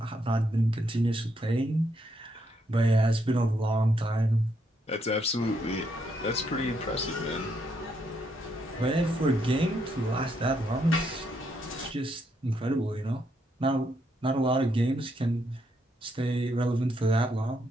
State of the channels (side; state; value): both; normal; correlation 0.76